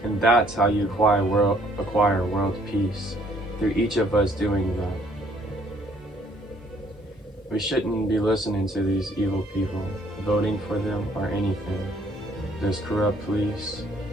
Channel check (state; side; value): normal; both; correlation 0.63